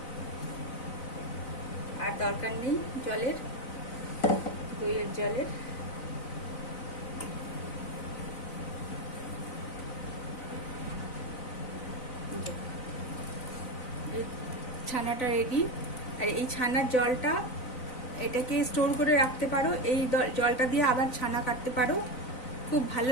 আর দরকার নেই জলের, দইয়ের জলের। এই ছানাটা রেডি। আর এই ছানার জলটা এটাকে স্টোর করে রাখতে পারো, এই জলটা দিয়ে আবার ছানা কাটতে পারো, খুব ভালো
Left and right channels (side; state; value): right; late; 4.0 ms